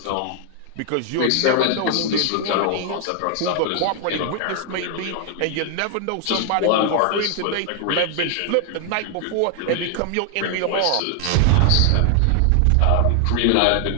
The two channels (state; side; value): different; both; correlation 0.00